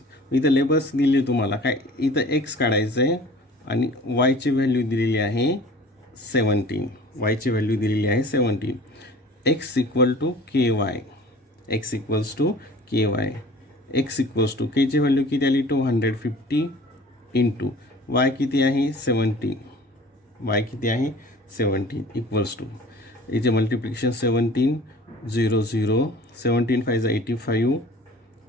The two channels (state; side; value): normal; both; correlation 0.46